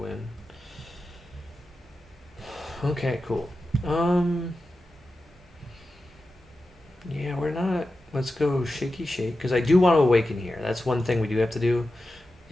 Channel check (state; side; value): normal; both; correlation 0.92